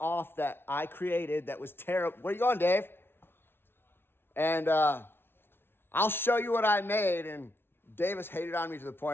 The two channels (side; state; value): right; late; 0.11 ms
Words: that I created that was terrible. Where you going, Dave? And I'll show you what I made, and Davis hated on me to the